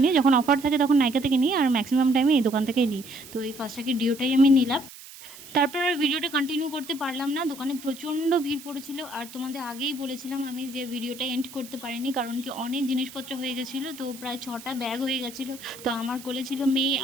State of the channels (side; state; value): right; noise; hiss, 17 dB below the sound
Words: যখন অফার থাকে তখন নাইকা থেকে নিই, আর ম্যাক্সিমাম টাইমে এই দোকান থেকেই নিই। তো এই ফার্স্ট ট্র্যাকের ডিওটাই আমি নিলাম। তারপর আর ভিডিওটা কন্টিনিউ করতে পারলাম না, দোকানে প্রচণ্ড ভিড় পড়েছিল। আর তোমাদের আগেই বলেছিলাম আমি যে ভিডিওটা এন্ড করতে পারিনি, কারণ কি অনেক জিনিসপত্র হয়ে গেছিলো। তো প্রায় 6টা ব্যাগ হয়ে গেছিলো। তো আমার কোলে ছিল মেয়ে,